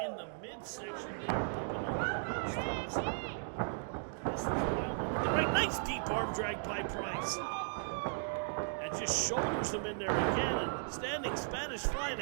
in the midsection here. This is wild. With the right, nice deep arm drag by Pryce. And just shoulders him in there again. And standing Spanish fly and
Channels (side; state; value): left; silent; digital silence